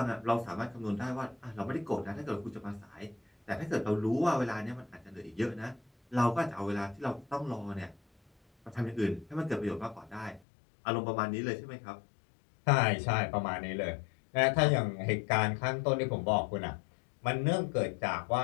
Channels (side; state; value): right; drops out; at 10.4 s